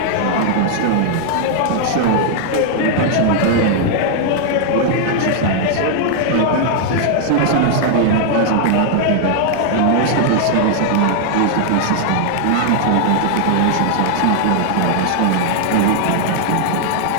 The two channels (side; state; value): both; different; correlation 0.00